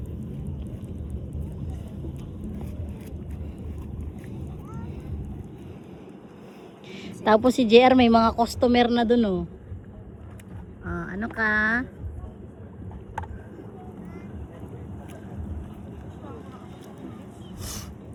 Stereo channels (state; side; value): identical; both; correlation 1.00